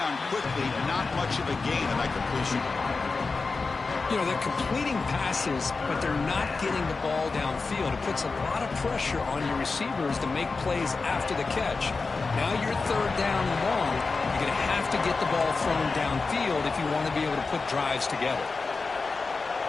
quickly, not much of a gain on that completion. You know, they're completing passes, but they're not getting the ball downfield. It puts a lot of pressure on your receivers to make plays after the catch. Now you're third down and long. You're going to have to get the ball thrown downfield if you want to be able to put drives together.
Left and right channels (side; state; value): right; quieter; 4.2 dB